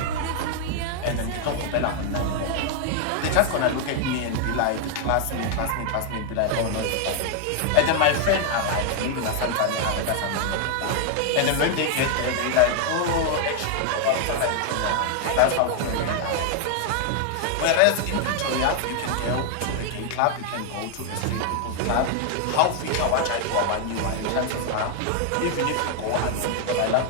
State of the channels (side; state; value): both; different; correlation 0.00